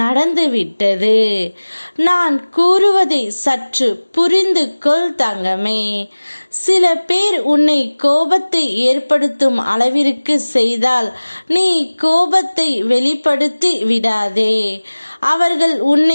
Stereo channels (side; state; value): both; inverted; correlation -1.00